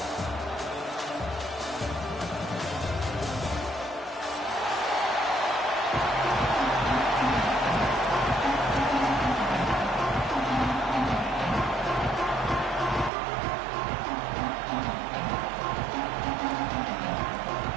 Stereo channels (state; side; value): drops out; left; at 13.1 s